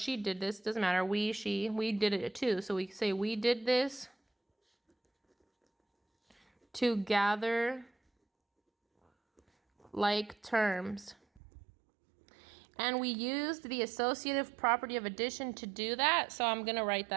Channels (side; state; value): left; drops out; at 11.4 s